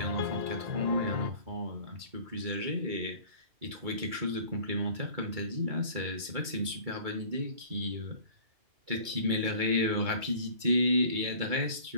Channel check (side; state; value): left; late; 2.3 ms